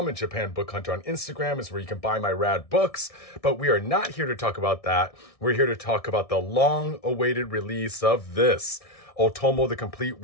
and Japan Book Hunter on Instagram is where you can buy my rad books. But we are not here to talk about that. We're here to talk about the long-awaited release of this, Otomo: The Complete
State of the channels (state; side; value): late; right; 1.7 ms